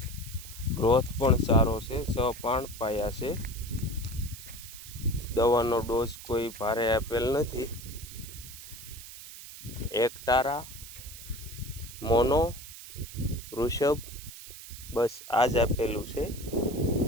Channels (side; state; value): right; noise; hiss, 14 dB below the sound